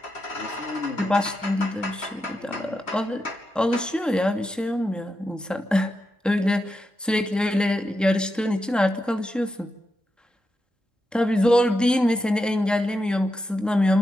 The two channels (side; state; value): both; normal; correlation 0.87